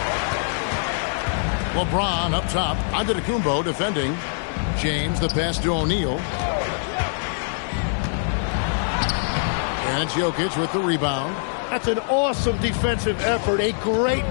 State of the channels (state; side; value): silent; right; digital silence